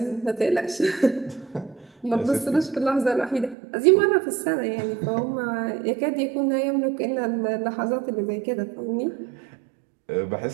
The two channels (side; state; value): left; drops out; at 3.6 s